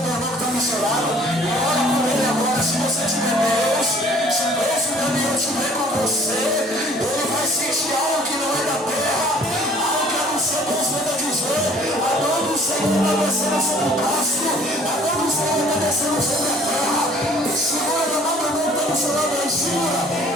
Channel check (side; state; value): both; normal; correlation 0.55